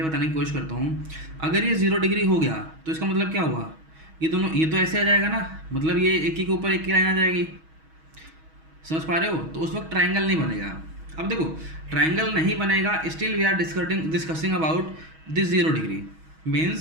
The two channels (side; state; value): left; late; 6.3 ms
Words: बताने की कोशिश करता हूँ, अगर ये 0 डिग्री हो गया तो इसका मतलब क्या हुआ, ये दोनों ये तो ऐसे आ जाएगा ना, मतलब ये एक ही के ऊपर एक की लाइन आ जाएगी। समझ पा रहे हो? तो उस वक्त ट्रायंगल नहीं बनेगा। अब देखो ट्रायंगल नहीं बनेगा, still we are discussing about this 0 degree.